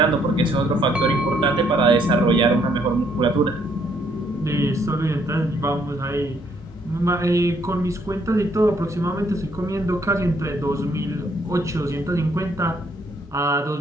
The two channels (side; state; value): both; normal; correlation 0.68